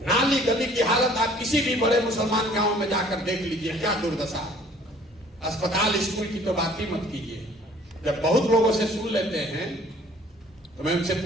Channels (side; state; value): both; normal; correlation 0.55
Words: नाली गली की हालत आप किसी भी बड़े मुसलमान गांव में जाकर देख लीजिए, क्या दुर्दशा है। अस्पताल स्कूल की तो बात ही मत कीजिए। जब बहुत लोगों से सुन लेते हैं तो मैं उनसे